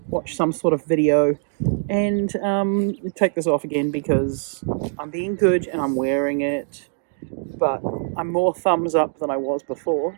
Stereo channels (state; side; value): silent; left; digital silence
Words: watch some sort of video, and take this off again because I'm being good and I'm wearing it, but I'm more thumbs up than I was